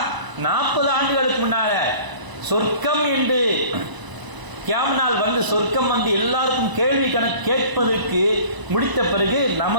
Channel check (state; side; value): late; left; 1.0 ms